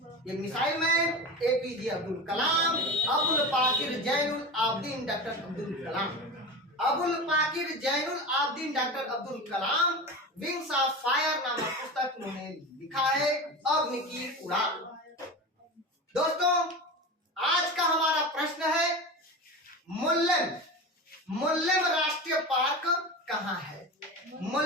ये missile man APJ Abdul Kalam, Abul Pakir Zainul Abedin doctor Abdul Kalam, Abul Pakir Zainul Abedin doctor Abdul Kalam wings of fire नामक पुस्तक उन्होंने लिखा है, अग्नि की उड़ान। दोस्तों आज का हमारा प्रश्न है मुल्लेम राष्ट्रीय पार्क कहाँ है।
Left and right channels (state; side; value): normal; both; correlation 0.27